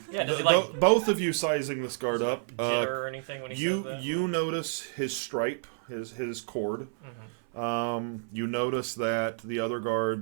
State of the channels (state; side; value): silent; left; 58 dB below the other